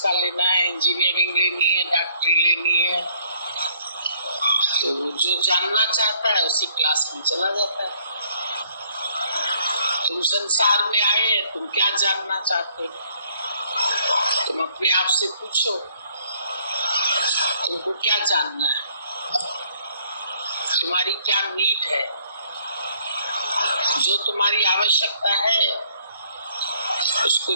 का लेना है, इंजीनियरिंग लेनी है, डॉक्टरी लेनी है। तो जो जानना चाहता है उसी क्लास में चला जाता है। तुम संसार में आए, तुम क्या जानना चाहते हो? तुम अपने आप से पूछो, तुमको क्या जानना है, तुम्हारी क्या नीड है, जो तुम्हारी आवश्यकता है उसको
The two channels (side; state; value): both; inverted; correlation -0.65